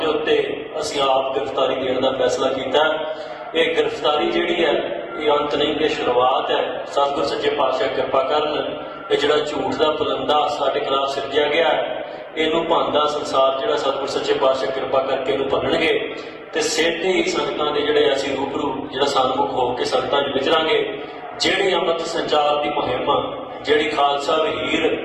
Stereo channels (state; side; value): identical; both; correlation 1.00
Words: उत्ते असीं आप गिरफ्तारी देने का फैसला किया। ये गिरफ्तारी जिहड़ी है ये अंत नहीं, ये शुरुआत है। सतगुर सच्चे पातशाह कृपा करन, ये जिहड़ा झूठ का पुलंदा साडे खिलाफ सिरजिया गया है, इनू भंदा संसार जिहड़ा सतगुर सच्चे पातशाह कृपा करके इनू भन्नणगे ते सेधे ही संगतां दे जिहड़े असीं रूबरू जिहड़ा सन्मुख हो के संगतां च विचरांगे। जिहड़ी अमृत संचार की मुहिम, जिहड़ी खालसा वहीर